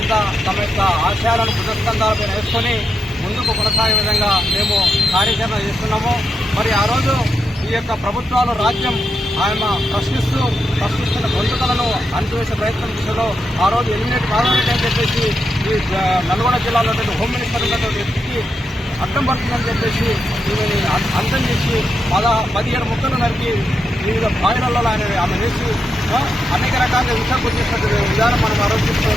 తమ యొక్క ఆశయాలను భుజస్కంధాలపై వేసుకొని ముందుకు కొనసాగే విధంగా మేము కార్యాచరణ చేస్తున్నాము. మరి ఆ రోజు ఈ యొక్క ప్రభుత్వాలు రాజ్యం ఆయన ప్రశ్నిస్తున్న గొంతుకలను అణచివేసే ప్రయత్నం దిశలో ఆ రోజు ఎలిమినేట్ కావాలని చెప్పేసి ఈ నల్గొండ జిల్లాలో హోమ్ మినిస్టర్ ఉన్నటువంటి వ్యక్తికి అడ్డం పడుతుందని చెప్పేసి దీనిని అంతం చేసి 17 ముక్కలు నరికి వివిధ బాయిలలో ఆమె వేసి అనేక రకాలుగా విషయాలు చేసినటువంటి విధానం మనం ఆ రోజు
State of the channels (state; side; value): normal; both; correlation 0.84